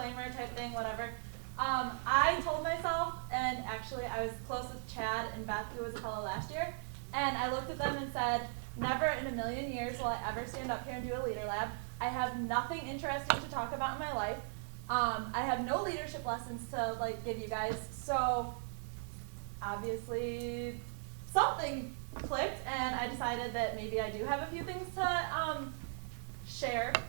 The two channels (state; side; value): silent; left; 52 dB below the other